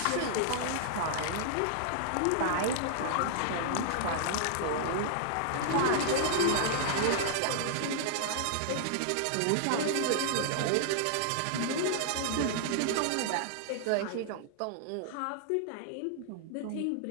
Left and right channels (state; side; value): different; both; correlation -0.01